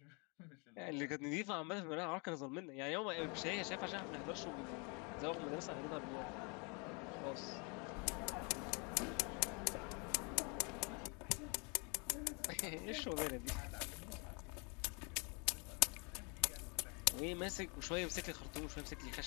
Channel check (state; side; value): quieter; right; 32.9 dB